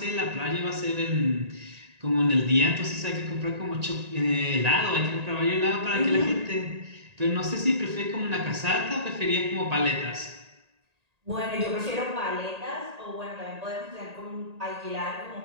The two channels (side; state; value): left; late; 1.8 ms